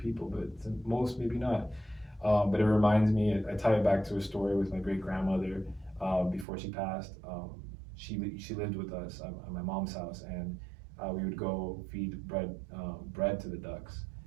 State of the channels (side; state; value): left; drops out; at 6.5 s